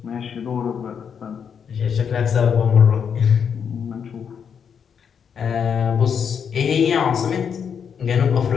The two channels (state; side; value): quieter; right; 7.2 dB